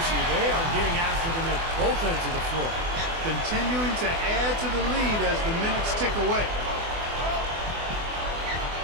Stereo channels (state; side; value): late; left; 24 ms